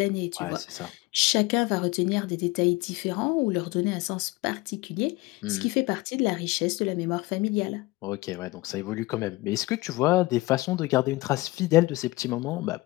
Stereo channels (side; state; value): right; quieter; 20.9 dB